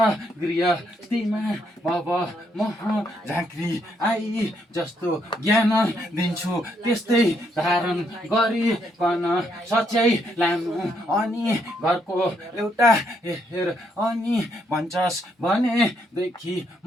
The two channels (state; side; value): normal; both; correlation 0.74